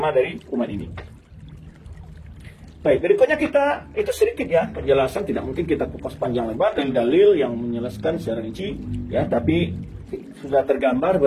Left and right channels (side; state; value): both; identical; correlation 1.00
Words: dari umat ini. Baik, berikutnya kita, itu sedikit ya penjelasan, tidak mungkin kita kupas panjang lebar dari dalil yang menjelaskan secara rinci, ya, tapi sudah tergambar